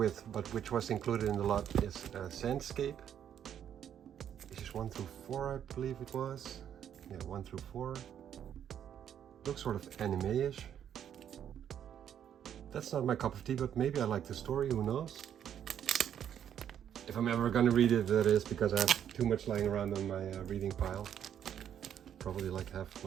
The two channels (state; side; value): quieter; left; 9.4 dB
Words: but which was included in the lot, is Sandscape. Issues 1 through 4, I believe it was. Yeah, 1 through 4. Looks sort of anime-ish. That's not my cup of tea, but maybe I like the story, who knows? If I'm ever gonna read it, that is, because I have too much lying around on my reading pile. Probably like half